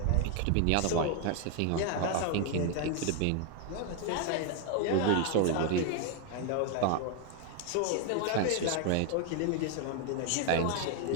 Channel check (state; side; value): different; both; correlation 0.01